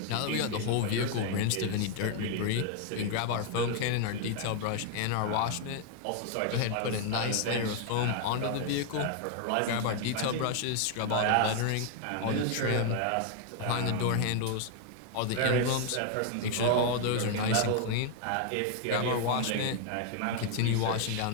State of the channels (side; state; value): both; different; correlation 0.00